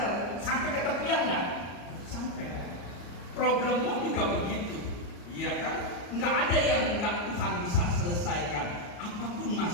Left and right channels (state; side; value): late; right; 34 ms